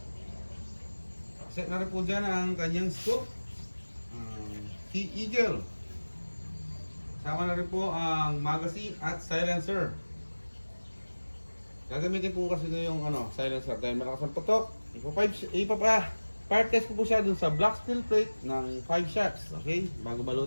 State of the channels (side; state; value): both; inverted; correlation -1.00